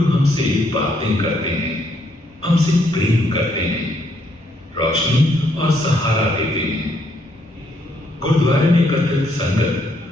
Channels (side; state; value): both; normal; correlation 0.72